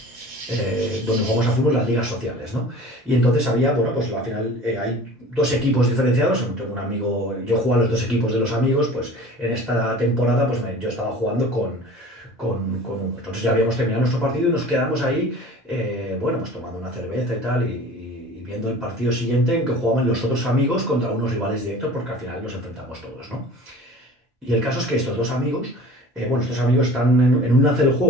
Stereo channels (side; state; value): both; normal; correlation 0.42